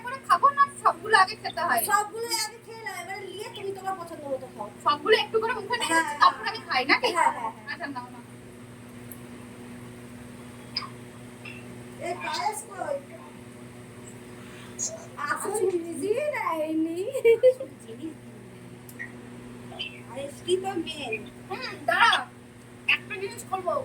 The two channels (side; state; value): both; identical; correlation 1.00